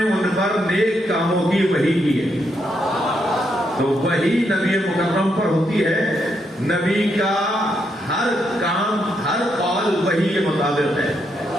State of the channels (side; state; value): both; normal; correlation 0.79